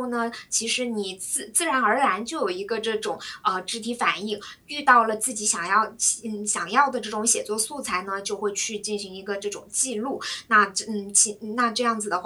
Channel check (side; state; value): both; identical; correlation 1.00